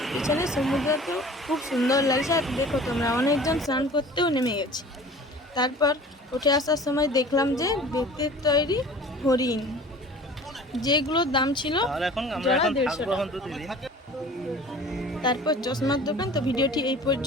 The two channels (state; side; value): normal; both; correlation 0.44